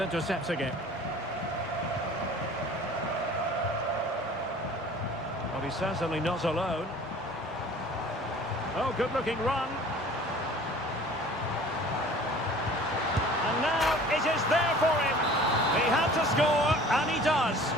it. Well, he's certainly not alone. Oh, good-looking run. And now it is there for him. He had to score, and he does.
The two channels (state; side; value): normal; both; correlation 0.46